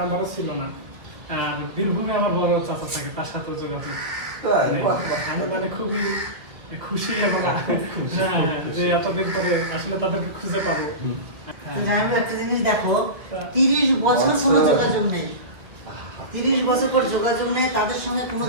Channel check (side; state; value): left; late; 1.8 ms